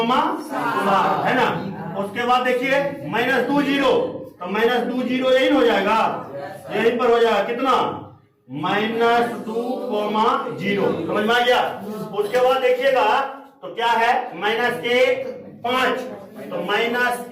7 है ना। उसके बाद देखिए -2 0, तो -2 0 यही हो जाएगा, यहीं पर हो जाएगा कितना -2 कोमा 0। समझ में आ गया? उसके बाद देखिएगा तो क्या है -1 5, तो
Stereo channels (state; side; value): identical; both; correlation 1.00